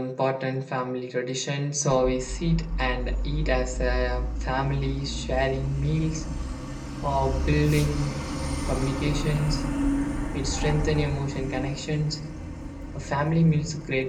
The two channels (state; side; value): identical; both; correlation 1.00